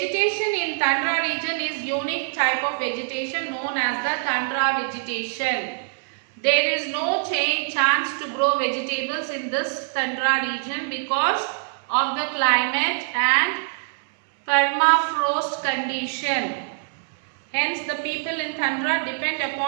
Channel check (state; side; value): silent; left; 63 dB below the other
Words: in tundra region is unique type of vegetation known as as the tundra vegetation. There is no chance to grow vegetables in this tundra region because of the climate and permafrost condition. Hence, the people in tundra depend